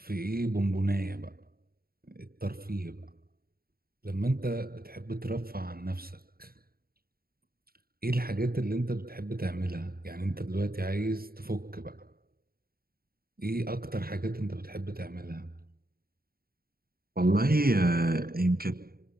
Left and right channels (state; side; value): late; left; 0.44 ms